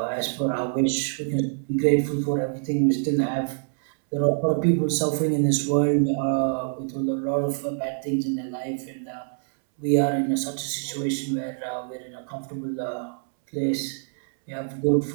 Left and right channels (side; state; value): left; silent; 62 dB below the other